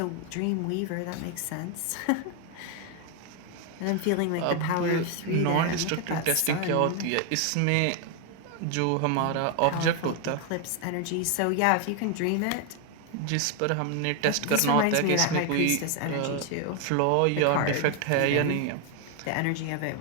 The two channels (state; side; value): different; both; correlation 0.01